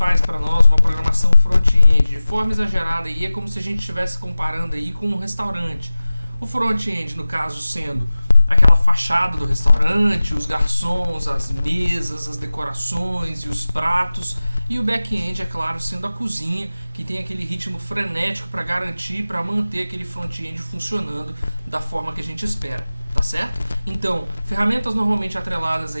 para nós uma programação front-end de forma exagerada e é como se a gente estivesse comparando aí com um restaurante. O front-end, no caso, sendo aquela fachada do restaurante, os garçons, as mesas, as decorações e os pratos. E o back-end, é claro, sendo a cozinha, que tem aquele ritmo frenético para garantir, para manter aquele front-end funcionando da forma que a gente espera, tá certo? Então, ferramentas normalmente atreladas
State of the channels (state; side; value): inverted; both; correlation -0.97